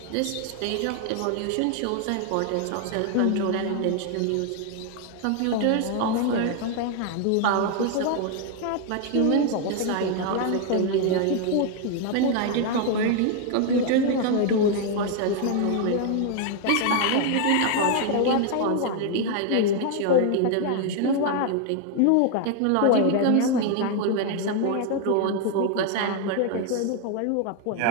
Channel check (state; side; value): different; both; correlation 0.00